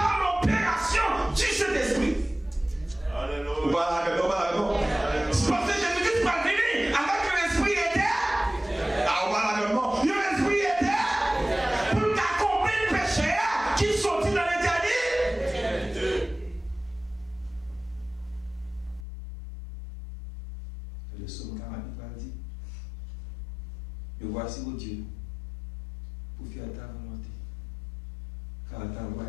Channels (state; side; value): drops out; right; at 19.1 s